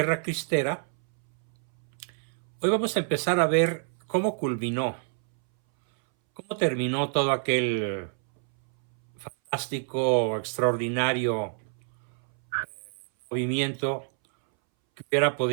Cristera. Hoy vamos a empezar a ver cómo culminó, cómo terminó todo aquel fantástico, extraordinario movimiento que hubiera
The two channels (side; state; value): left; silent; 60 dB below the other